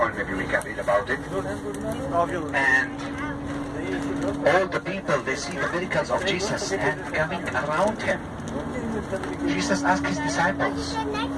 maybe we can read about it, and all the people, they see the miracles of Jesus and coming around him. Jesus asked his disciples,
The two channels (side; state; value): both; identical; correlation 1.00